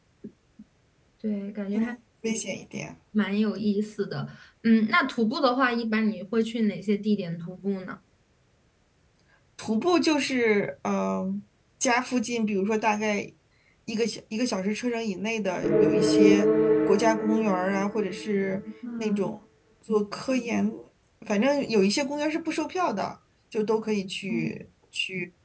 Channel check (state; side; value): identical; both; correlation 1.00